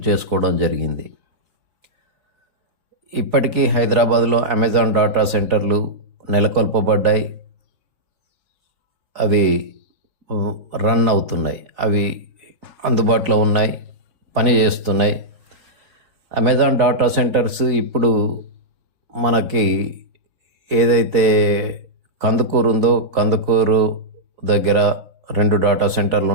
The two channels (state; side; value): late; left; 4.0 ms